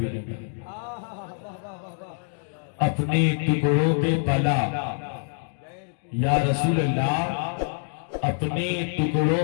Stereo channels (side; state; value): right; silent; 61 dB below the other